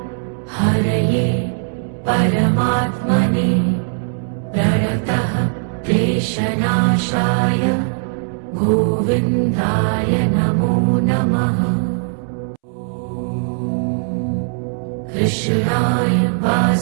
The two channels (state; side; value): silent; left; 67 dB below the other